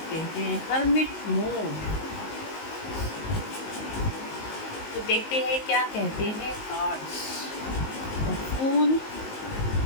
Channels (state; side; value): late; right; 19 ms